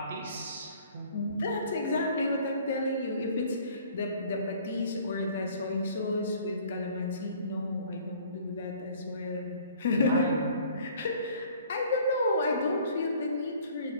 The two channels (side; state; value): both; inverted; correlation -0.53